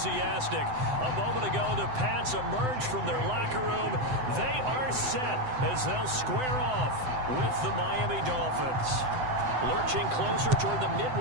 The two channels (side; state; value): left; late; 7.8 ms